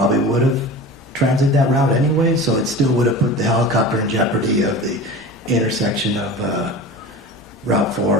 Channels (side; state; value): both; normal; correlation 0.34